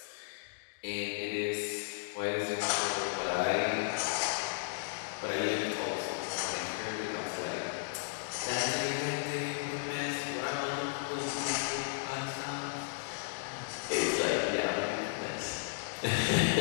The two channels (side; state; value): right; silent; digital silence